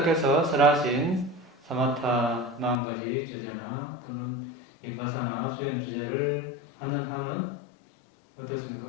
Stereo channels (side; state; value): right; drops out; at 2.8 s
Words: 설하신 사마타 40가지 주제나 또는 비파사나 수행 주제를 하는 한은